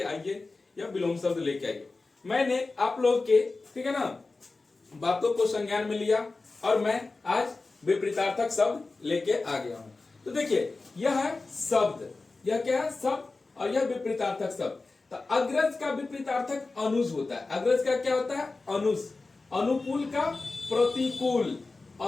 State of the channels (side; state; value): right; quieter; 3.6 dB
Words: आइए या विलोम शब्द लेके आइए। मैंने आप लोग के ठीक है ना बातों को संज्ञान में लिया और मैं आज विपरीतार्थक शब्द लेके आ गया हूँ। तो देखिए, यह है शब्द, यह क्या है शब्द, और यह विपरीतार्थक शब्द। तो अग्रज का विपरीतार्थक अनुज होता है। अग्रज का क्या होता है? अनुज। अनुकूल का प्रतिकूल,